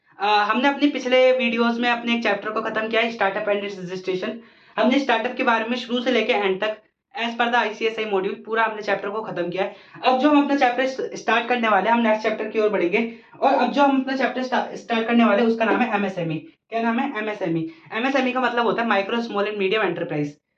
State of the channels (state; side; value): identical; both; correlation 1.00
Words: हमने अपने पिछले वीडियोस में अपने एक चैप्टर को खत्म किया है, स्टार्टअप एंड इट्स रजिस्ट्रेशन। हमने स्टार्टअप के बारे में शुरू से लेकर एंड तक as per the ICSI module पूरा हमने चैप्टर को खत्म किया है। अब जो हम अपना चैप्टर स्टार्ट करने वाले हैं, हम नेक्स्ट चैप्टर की ओर बढ़ेंगे। और अब जो हम अपना चैप्टर स्टार्ट करने वाले हैं उसका नाम है एमएसएमई। क्या नाम है? एमएसएमई। एमएसएमई का मतलब होता है micro small and medium enterprise.